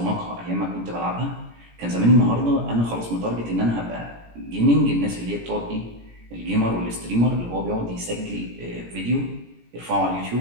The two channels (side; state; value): left; late; 17 ms